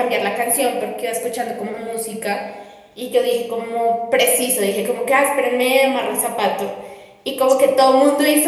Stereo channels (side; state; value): both; identical; correlation 1.00